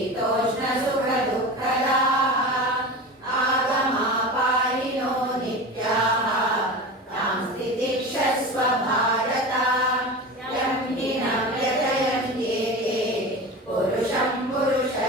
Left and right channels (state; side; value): normal; both; correlation 0.29